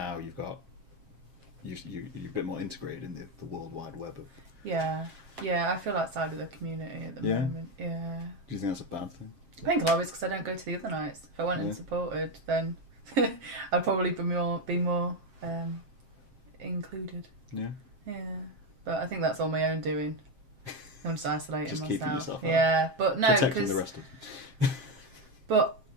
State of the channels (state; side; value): late; left; 7.5 ms